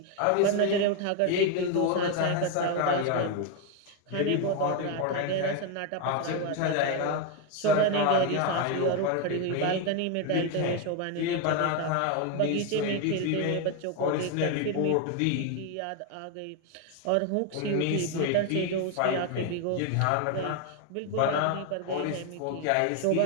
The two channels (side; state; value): both; different; correlation 0.01